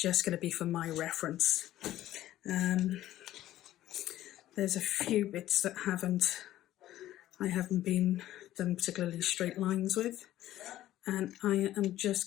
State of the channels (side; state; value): right; quieter; 13.9 dB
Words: going to be for my reference. There's a few bits that I haven't been done particularly straight lines with, and I am just